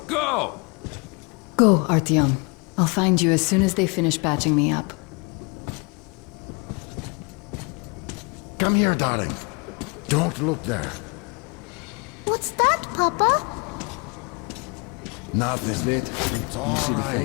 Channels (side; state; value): right; quieter; 32.0 dB